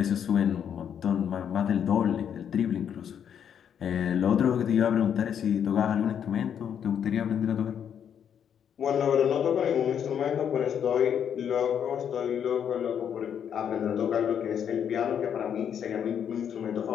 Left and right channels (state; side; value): quieter; right; 8.5 dB